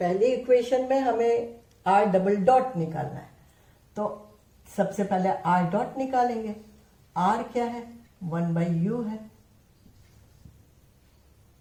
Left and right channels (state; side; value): identical; both; correlation 1.00